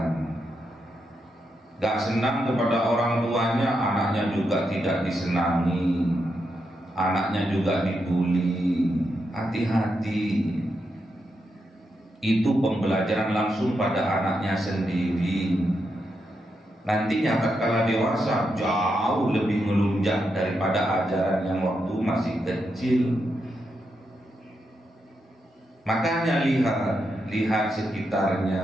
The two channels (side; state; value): both; normal; correlation 0.84